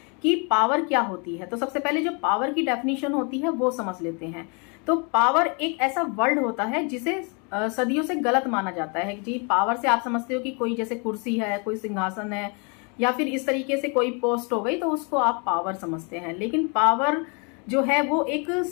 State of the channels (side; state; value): right; quieter; 34.1 dB